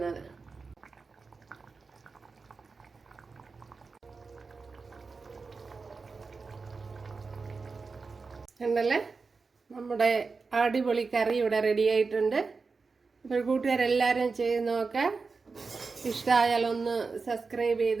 ഉണ്ടല്ലേ, നമ്മുടെ അടിപൊളി കറി ഇവിടെ റെഡി ആയിട്ടുണ്ട്. അപ്പോൾ കൂട്ടുകാരെല്ലാവരും ചെയ്ത് നോക്കാം. ഇഷ്ടമായാൽ ഒന്ന് സബ്സ്ക്രൈബ്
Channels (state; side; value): quieter; left; 4.5 dB